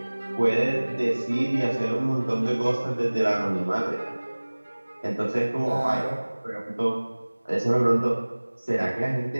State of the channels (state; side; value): inverted; both; correlation -1.00